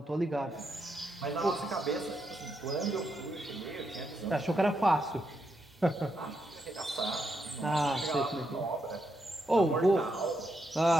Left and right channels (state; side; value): normal; both; correlation 0.81